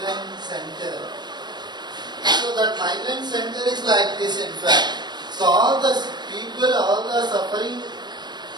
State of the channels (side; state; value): left; late; 0.21 ms